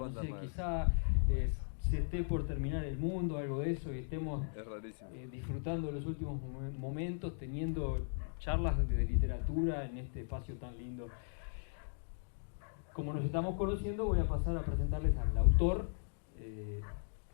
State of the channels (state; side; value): silent; right; digital silence